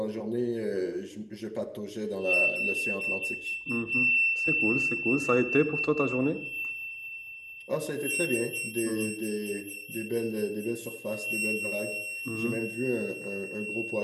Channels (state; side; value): identical; both; correlation 1.00